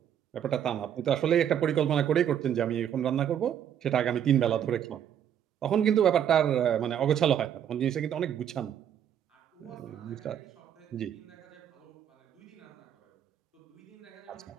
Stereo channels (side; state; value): left; quieter; 9.5 dB